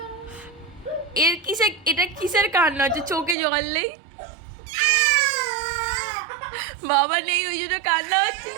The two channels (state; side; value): drops out; left; at 3.4 s